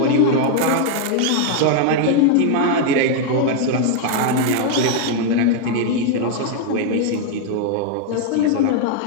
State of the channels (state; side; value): different; both; correlation 0.00